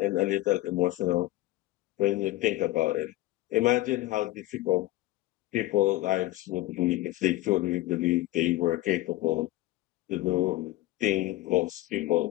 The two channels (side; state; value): right; quieter; 17.4 dB